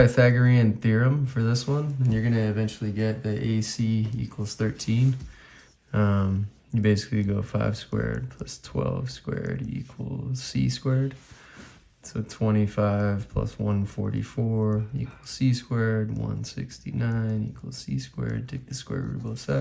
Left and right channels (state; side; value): identical; both; correlation 1.00